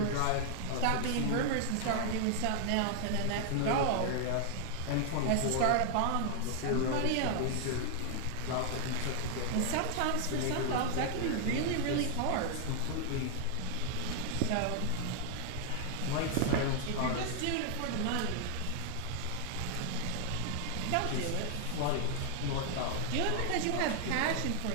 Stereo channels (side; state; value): both; different; correlation 0.00